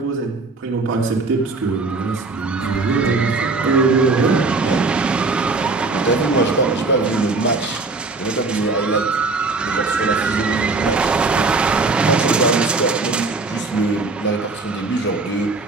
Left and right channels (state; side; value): quieter; left; 3.7 dB